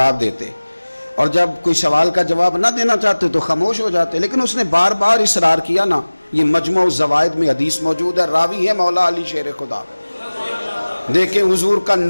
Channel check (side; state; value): both; inverted; correlation -1.00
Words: دیتے، اور جب کوئی سوال کا جواب نہ دینا چاہتے تو خاموش ہو جاتے، لیکن اس نے بار بار اصرار کیا نا۔ یہ مجموع الزوائد میں حدیث موجود ہے، راوی ہے مولا علی شیر خدا۔ دیکھیں حضور کا